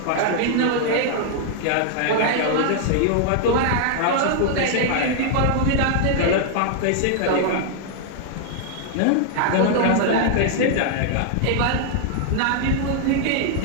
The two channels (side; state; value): both; different; correlation 0.00